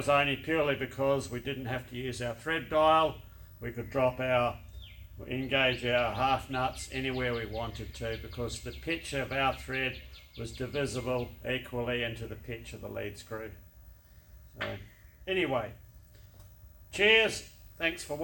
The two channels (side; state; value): both; identical; correlation 1.00